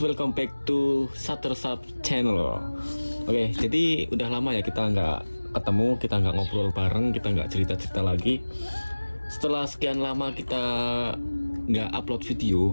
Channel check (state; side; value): inverted; both; correlation -1.00